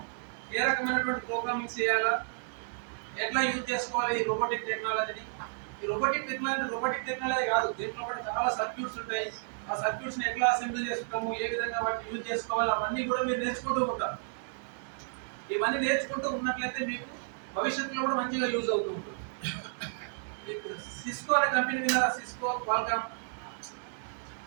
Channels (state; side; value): silent; left; 57 dB below the other